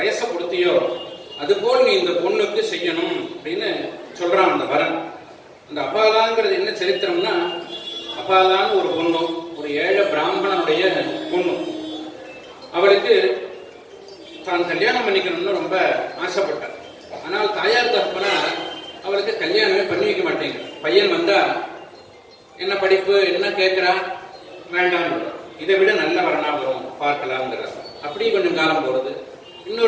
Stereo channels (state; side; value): identical; both; correlation 1.00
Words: கொடுத்தியோ, அதுபோல் நீ இந்த பொண்ணுக்கு செய்யணும் அப்படின்னு சொல்றான் அந்த வரன். அந்த அபாலாங்கிறது என்ன சரித்திரம்னா, அபாலான்னு ஒரு பொண்ணு, ஒரு ஏழை பிராமணனுடைய பொண்ணு. அவளுக்கு தான் கல்யாணம் பண்ணிக்கணும்னு ரொம்ப ஆசைப்பட்டார். ஆனால் தாயார் தகப்பனார் அவளுக்கு கல்யாணமே பண்ணி வைக்க மாட்டேங்க. பையன் வந்தா என்ன படிப்பு என்ன கேட்கிறா, வேண்டாம், இதை விட நல்ல வரனா வரும் பார்க்கலாம்ங்கிற. அப்படி கொஞ்சம் காலம் போறது,